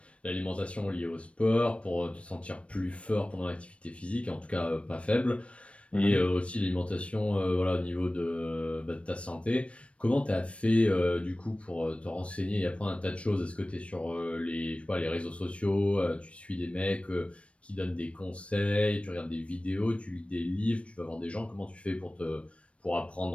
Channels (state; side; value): late; right; 0.062 ms